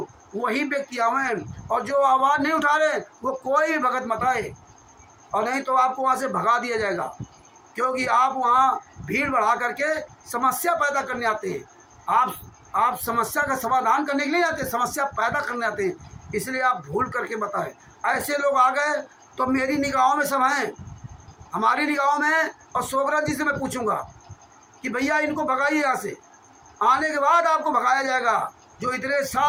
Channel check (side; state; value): both; identical; correlation 1.00